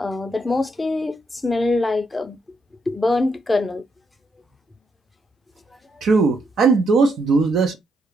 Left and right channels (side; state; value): both; normal; correlation 0.78